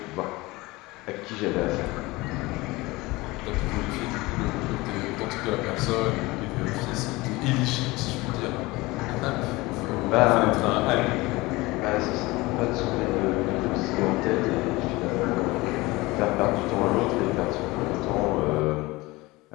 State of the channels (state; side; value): quieter; right; 21.6 dB